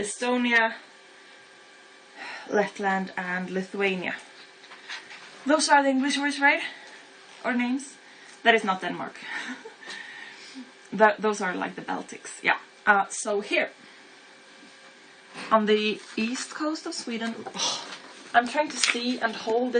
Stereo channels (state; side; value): identical; both; correlation 1.00